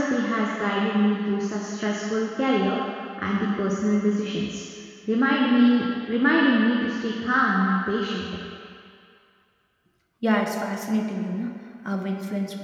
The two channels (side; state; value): both; identical; correlation 1.00